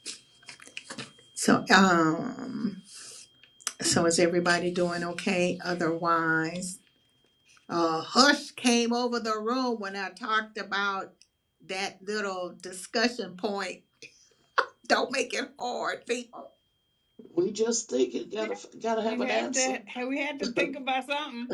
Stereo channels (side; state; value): both; identical; correlation 1.00